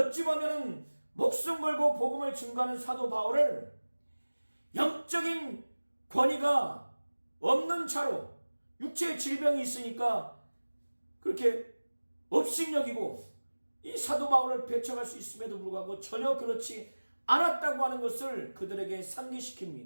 보면 목숨 걸고 복음을 증거하는 사도 바울을 영적인 권위가 없는 차로 육체의 질병이 있으니까 그렇게 업신여기고 이 사도 바울을 배척할 수 있음에도 불구하고 전혀 그렇지 않았다고 하는 것을 그들에게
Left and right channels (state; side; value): inverted; both; correlation -1.00